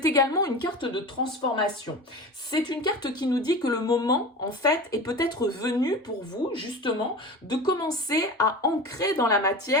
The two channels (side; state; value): both; normal; correlation 0.31